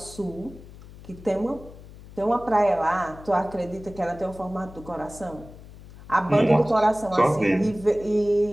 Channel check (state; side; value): noise; left; hum, 18 dB below the sound